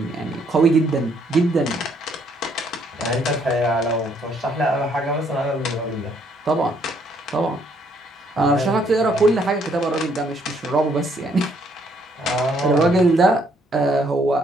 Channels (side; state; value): both; normal; correlation 0.68